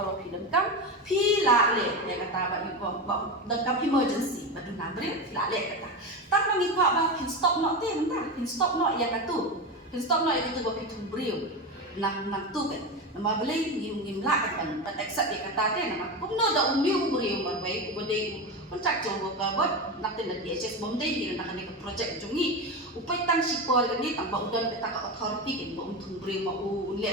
film kam pi la le ya kata ba yu ko dengkam emergency badu na Briew la le kata tang mangi ko ba pin stop no te entah pin stop no ya katu ba Thung Briew nang tu kan nama beli ngim la kan accept ya kata te nama kumno da umyu Briew ba bai bodai contractual worker bot nak tin DHS bomdai ni nak ni project jungi upai tang sipor ni tambah udan kita ka authority kan ba Thung Briew mau le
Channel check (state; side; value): normal; both; correlation 0.19